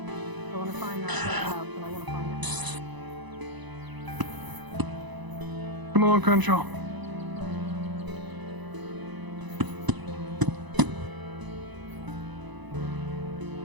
I want to find that house, and I want to find it. Come along, Crenshaw.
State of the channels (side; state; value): left; late; 1.0 ms